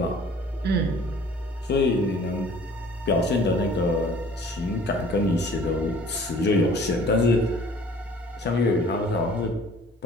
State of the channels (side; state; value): both; normal; correlation 0.51